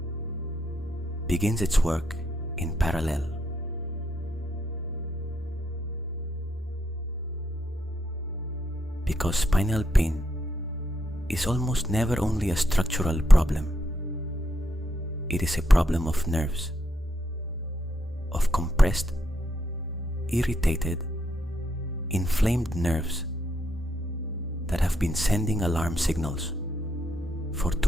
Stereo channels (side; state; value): both; normal; correlation 0.78